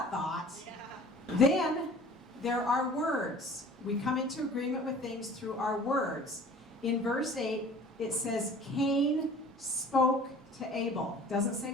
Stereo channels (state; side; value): normal; both; correlation 0.46